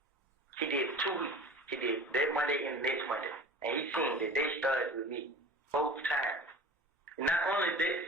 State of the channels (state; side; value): normal; both; correlation 0.38